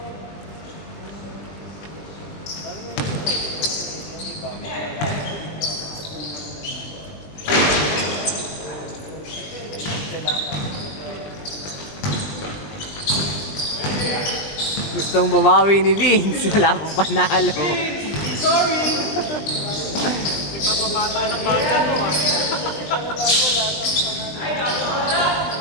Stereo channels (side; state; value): right; late; 20 ms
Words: Gustong bumawi ni Vince. Wala akong panalo. Ikaw pa bata ng bata to ah.